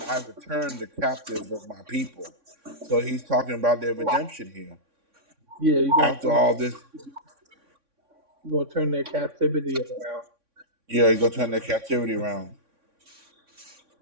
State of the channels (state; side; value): late; left; 3.6 ms